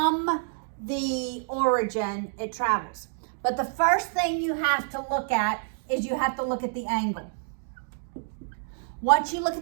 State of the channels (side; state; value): left; silent; digital silence